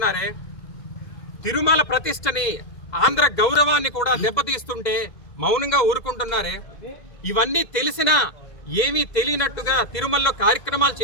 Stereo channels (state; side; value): late; right; 2.0 ms